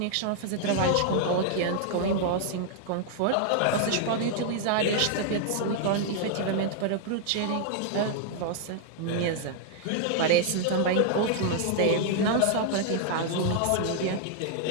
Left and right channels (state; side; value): different; both; correlation 0.00